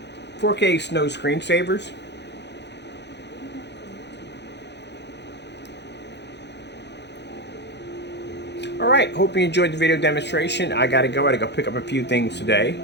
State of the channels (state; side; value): late; right; 0.50 ms